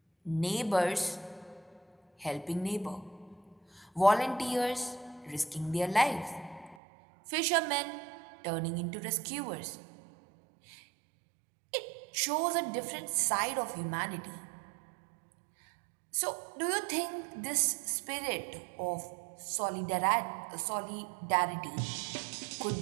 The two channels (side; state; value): left; drops out; at 6.8 s